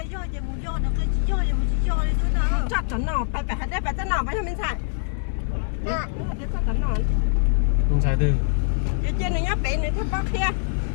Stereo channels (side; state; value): right; silent; digital silence